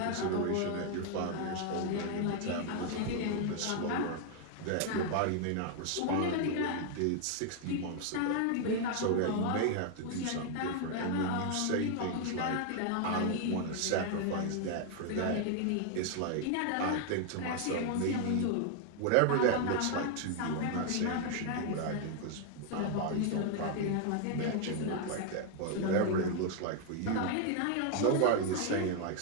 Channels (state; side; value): different; both; correlation 0.00